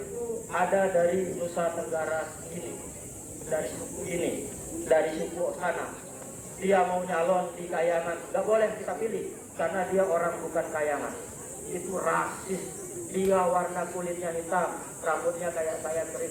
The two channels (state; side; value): identical; both; correlation 1.00